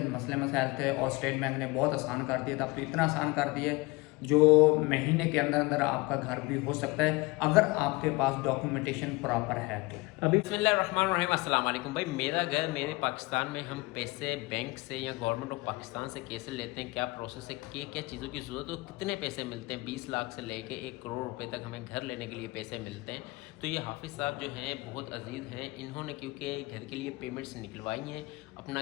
मसले मसाइल थे और स्टेट बैंक ने बहुत आसान कर दिया था। अब तो इतना आसान कर दिया जो महीने के अंदर अंदर आपका घर भी हो सकता है अगर आपके पास डॉक्यूमेंटेशन प्रॉपर है तो। अभी बिस्मिल्लाहिर्रहमानिर्रहीम, अस्सलाम वालेकुम। भाई मेरा घर मेरे पाकिस्तान में, हम पैसे बैंक से या गवर्नमेंट ऑफ पाकिस्तान से कैसे लेते हैं, क्या प्रोसेस है, क्या क्या चीज़ों की ज़रूरत है, कितने पैसे मिलते हैं, 20 लाख से लेके 1 करोड़ रुपए तक हमें घर लेने के लिए पैसे मिलते हैं। तो ये हाफिज़ साहब जो हैं बहुत अजीज़ हैं, इन्होंने क्योंकि घर के लिए पेमेंट्स निकलवाई हैं, अपना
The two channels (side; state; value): right; quieter; 23.2 dB